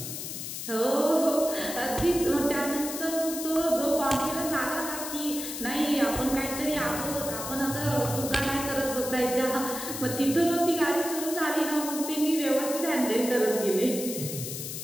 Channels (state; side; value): noise; left; hiss, 7 dB below the sound